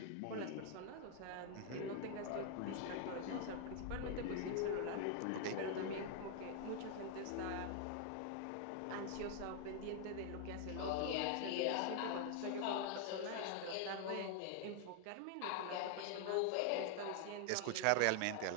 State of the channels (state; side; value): different; both; correlation 0.00